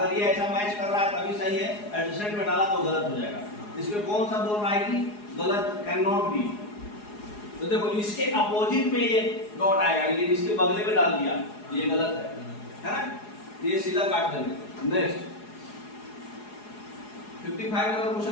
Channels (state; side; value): late; right; 4.8 ms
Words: ये ऐसा मैच कर रहा है तभी सही है, एडजस्टमेंट में डाला तो गलत हो जाएगा। इसमें कौन सा बोल रहा है कि गलत, कैन नॉट बी। तो देखो इसके अपोजिट में ये डॉट आएगा, लेकिन इसके बगले में डाल दिया, ये गलत है ना, ये सीधा काट देंगे। नेक्स्ट 55 नंबर